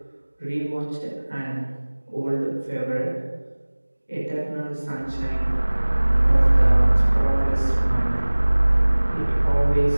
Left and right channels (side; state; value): both; inverted; correlation -1.00